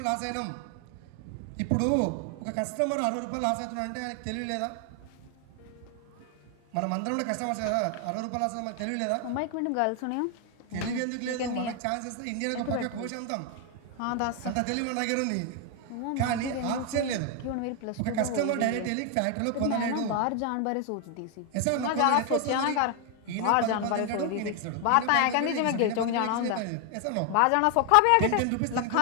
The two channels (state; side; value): different; both; correlation 0.00